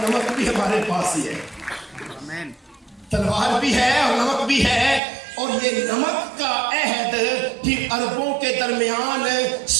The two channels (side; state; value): left; drops out; at 5.0 s